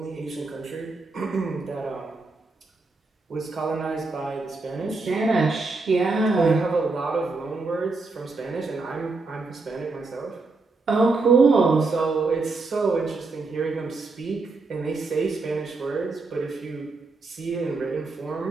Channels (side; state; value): left; quieter; 3.7 dB